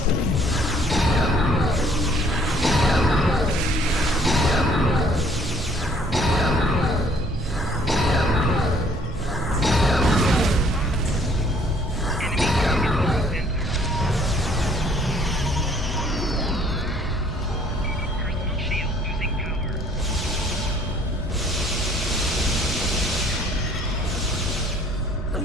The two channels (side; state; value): both; normal; correlation 0.60